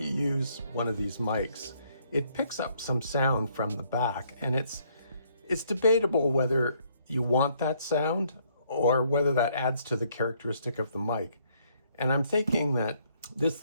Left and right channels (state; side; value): inverted; both; correlation -0.68